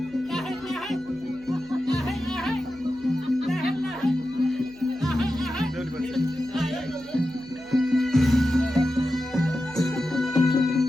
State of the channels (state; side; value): noise; left; hum, 26 dB below the sound